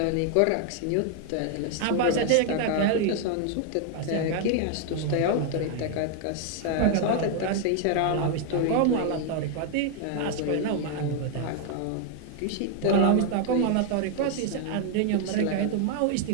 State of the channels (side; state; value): both; different; correlation 0.00